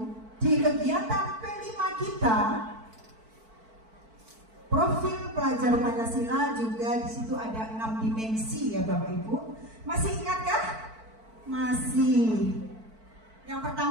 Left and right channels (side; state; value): left; late; 4.5 ms